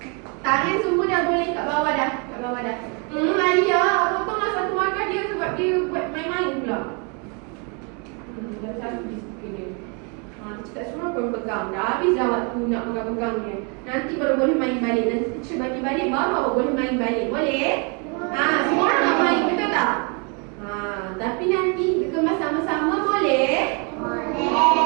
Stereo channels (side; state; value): left; quieter; 34.8 dB